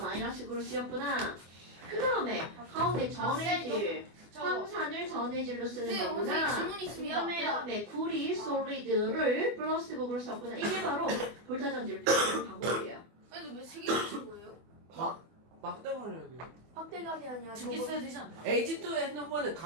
극으로 쓰였구나. 그 다음에 가운데 전해질 황산을 전해질로 쓰는 거구나. 질문이 있으면 그 다음에 구리 솔리드를 플러스 극으로 썼구나. 이게 바로 볼타 전지를 표현하는 방법이에요. 근데 왜세 개를 친 거예요? 막대가리요. 확대감이 아니야. 두개 써야 되지 않나? H2 핸드폰은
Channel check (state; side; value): late; left; 24 ms